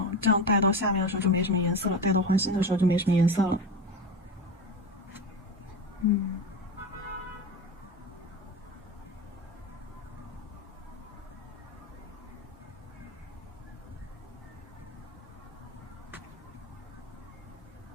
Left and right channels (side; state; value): both; normal; correlation 0.23